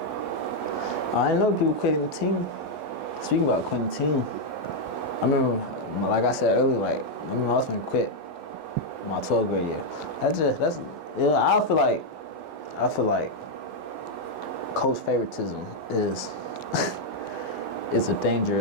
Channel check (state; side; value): late; right; 8.5 ms